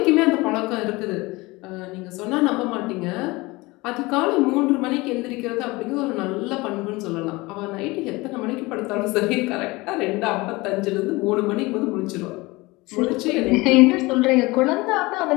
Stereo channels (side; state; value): right; quieter; 22.5 dB